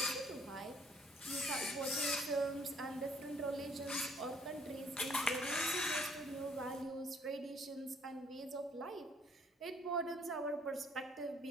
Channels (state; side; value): normal; both; correlation 0.63